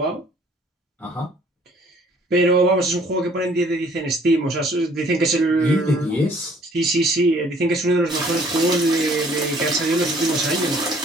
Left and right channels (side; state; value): both; normal; correlation 0.58